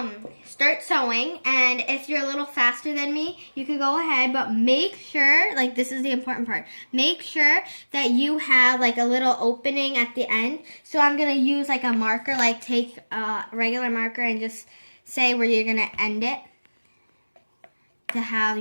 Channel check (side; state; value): both; inverted; correlation -1.00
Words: start sewing, and if you're a little faster than me, you can go ahead, but make sure, like this is the important part, make sure that you have like a little opening at the end. So I'm gonna use like a marker, like take a regular marker and just say where you're gonna end it to have